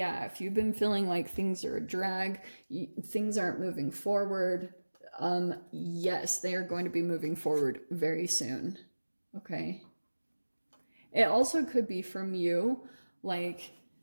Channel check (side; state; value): both; inverted; correlation -1.00